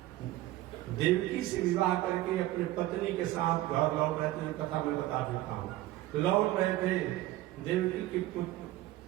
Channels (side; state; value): left; quieter; 16.1 dB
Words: देवकी से विवाह करके अपने पत्नी के साथ घर लौट रहे थे। कथा मैं बता देता हूँ। लौट रहे थे, देवकी के